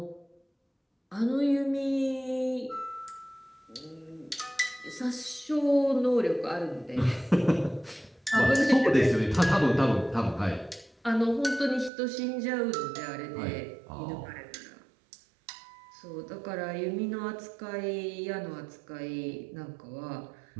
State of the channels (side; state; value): left; drops out; at 11.9 s